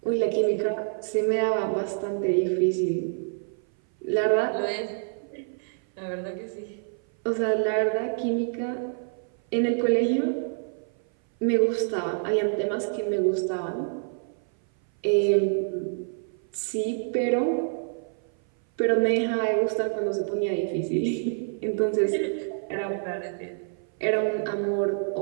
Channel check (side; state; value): left; silent; 58 dB below the other